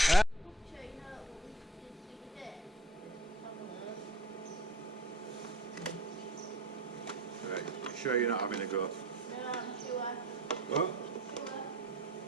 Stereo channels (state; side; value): normal; both; correlation 0.43